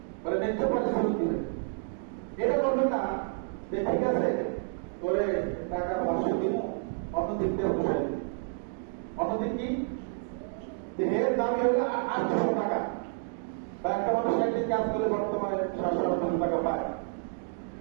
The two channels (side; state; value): left; silent; 58 dB below the other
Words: বলে ন্যায্য পারিশ্রমিক দিবেন। এটা করবেন না যে ঠিক আছে করে টাকা 500 দিন, অন্যদিন দিয়ে বসে দিন। অন্যদিন কি দেহের দামি হলে 800 টাকা, বা একটা মানুষ একদিন কাজ করে বর্তমানে 700 টাকা পায়,